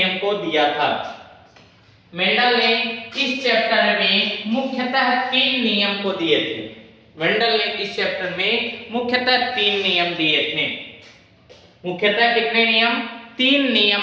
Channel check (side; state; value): both; identical; correlation 1.00